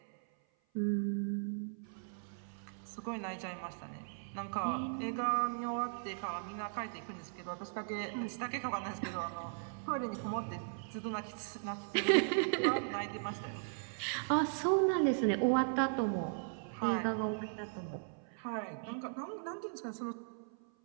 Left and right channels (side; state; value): left; silent; 53 dB below the other